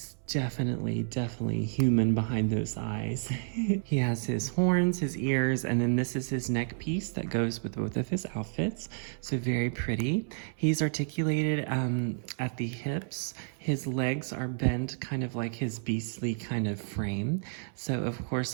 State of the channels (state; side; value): silent; left; 57 dB below the other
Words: definitely human behind those eyes. He has his horns, his ears, and then this is his neck piece that goes with both of his outfits. So very pretty. He's articulated at the hips. His legs are bent kind of like his beastly kind of frame. So of course